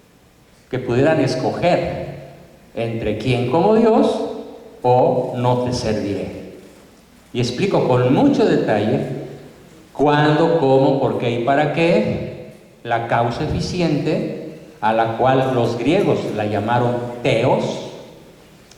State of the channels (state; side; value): identical; both; correlation 1.00